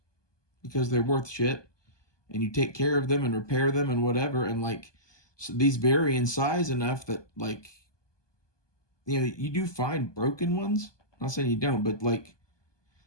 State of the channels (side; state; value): right; late; 1.2 ms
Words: because they're worth shit, and you take care of them and repair them and whatever. And like, so these vary in size enough that like, you know, you do find broken ones. I'm not saying you don't, but like,